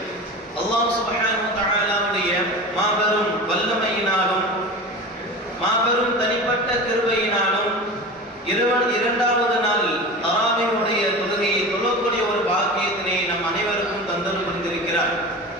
அல்லாஹ் சுப்ஹானஹு வ தஆலாவுடைய மாபெரும் வல்லமையினாலும் மாபெரும் தனிப்பட்ட கிருபையினாலும் இரண்டாவது நாள் தராவீஹுடைய தொழுகையை தொழக்கூடிய ஒரு பாக்கியத்தினை நம் அனைவருக்கும் தந்தல் புரிந்திருக்கிறார்.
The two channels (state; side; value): normal; both; correlation 0.31